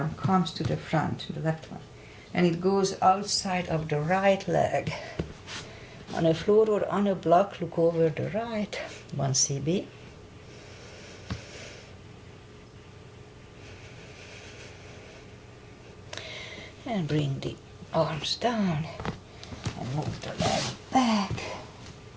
comes to the front, the left one, and it goes outside of the right leg. On a floor or on a block, look over the right, 1 CB. And bring the arms down and move the leg back.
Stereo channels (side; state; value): both; identical; correlation 1.00